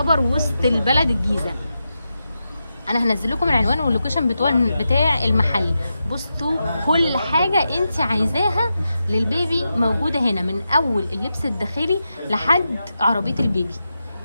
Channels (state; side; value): inverted; both; correlation -0.89